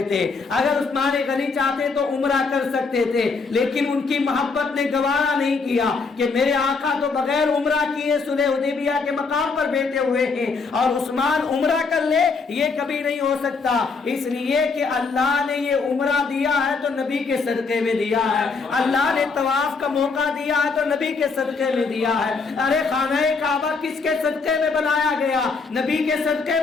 تھے، اگر عثمان غنی چاہتے تو عمرہ کر سکتے تھے، لیکن ان کی محبت نے گوارا نہیں کیا کہ میرے آقا تو بغیر عمرہ کیے صلح حدیبیہ کے مقام پر بیٹھے ہوئے ہیں اور عثمان عمرہ کر لے، یہ کبھی نہیں ہو سکتا، اس لیے کہ اللہ نے یہ عمرہ دیا ہے تو نبی کے صدقے میں دیا ہے، اللہ نے طواف کا موقع دیا ہے تو نبی کے صدقے میں دیا ہے. ارے خانہ کعبہ کس کے صدقے میں بنایا گیا؟ نبی کے صدقے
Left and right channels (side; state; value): right; quieter; 4.6 dB